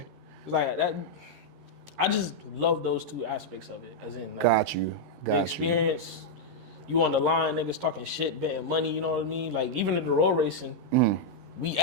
like that. I just love those two aspects of it. As in, like, Got you. the experience. You on the line, niggas talking shit, betting money. You know what I mean? Like, even in the road racing, we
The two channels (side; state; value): left; late; 13 ms